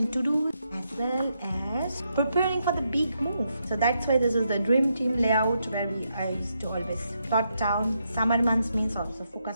to-do, as well as preparing for the big move. So that's why this is the dream team layout, where I used to always plot down. Summer months means also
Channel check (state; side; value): inverted; both; correlation -0.81